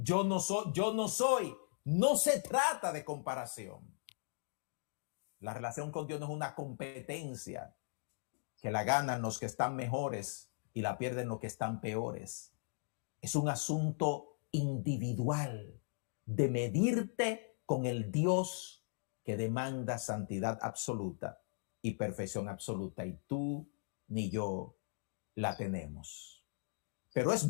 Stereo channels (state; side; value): silent; right; digital silence